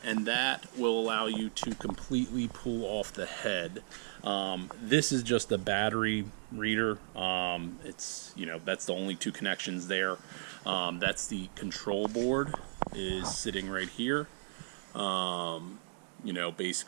and that will allow you to completely pull off the head. This is just a battery reader. It's, you know, that's the only two connections there. That's the control board is sitting right here. You know,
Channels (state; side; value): silent; left; digital silence